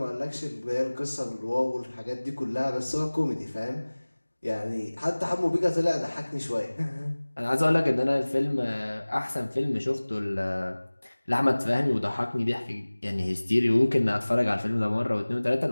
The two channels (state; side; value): inverted; both; correlation -1.00